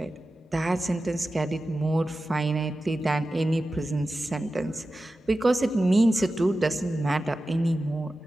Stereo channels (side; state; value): both; normal; correlation 0.93